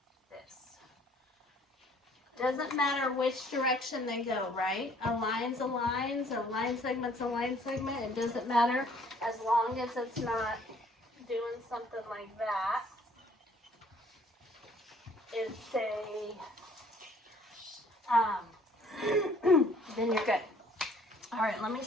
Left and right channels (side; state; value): both; normal; correlation 0.58